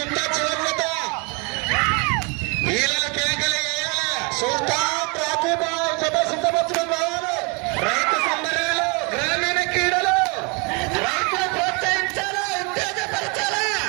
చివరిత వీళ్ళ కేకలు సుల్తాన్ రాకీ బాయ్ జత సిద్ధపరచడం కావాలి. రైతు సంబరాలు, గ్రామీణ క్రీడలు, రైతులు ప్రోత్సహించాలా, ఉత్తేజపరచాలా.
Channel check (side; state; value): left; quieter; 31.1 dB